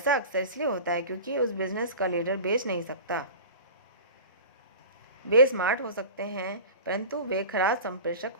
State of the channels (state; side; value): inverted; both; correlation -0.35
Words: अक्सर इसलिए होता है क्योंकि उस बिजनेस का लीडर बेच नहीं सकता। वे स्मार्ट हो सकते हैं, परंतु वे खराब संप्रेषक